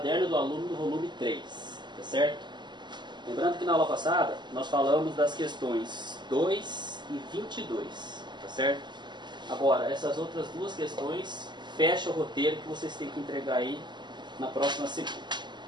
do aluno do volume 3, tá certo? Lembrando que na aula passada nós falamos das questões 2 e 22, tá certo? Agora, essas outras duas questões fecham o roteiro que vocês têm que entregar aí na próxima segunda.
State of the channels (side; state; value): left; late; 0.21 ms